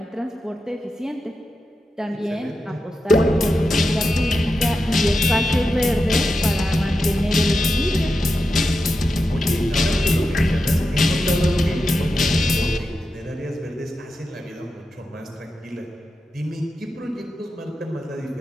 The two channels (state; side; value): normal; both; correlation 0.89